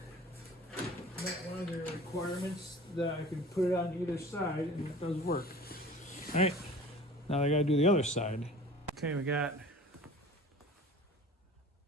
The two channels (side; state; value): both; normal; correlation 0.43